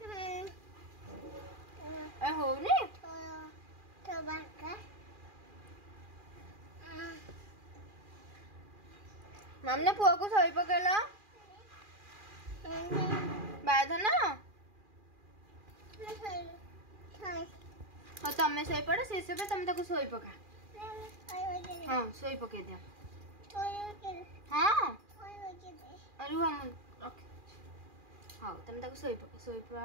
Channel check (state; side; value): late; left; 2.4 ms